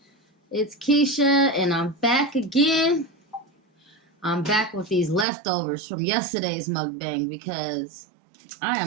it's Keisha and I'm back again. I'm back with these leftovers from yesterday's mukbang because I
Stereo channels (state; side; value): drops out; left; at 5.2 s